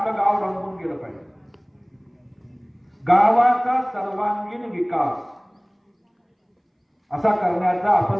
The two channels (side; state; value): both; identical; correlation 1.00